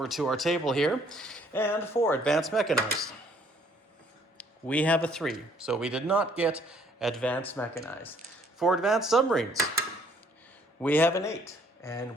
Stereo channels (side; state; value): both; normal; correlation 0.63